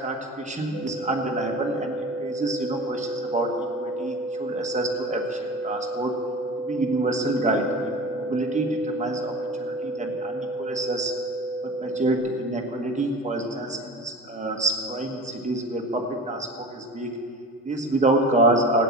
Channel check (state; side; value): normal; both; correlation 0.36